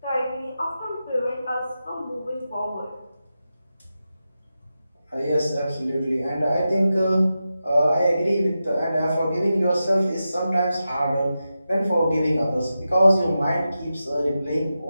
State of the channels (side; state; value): both; inverted; correlation -0.91